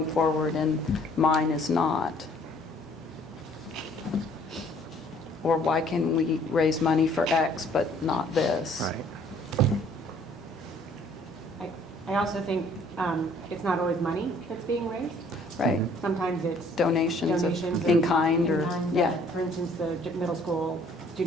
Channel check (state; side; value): normal; both; correlation 0.59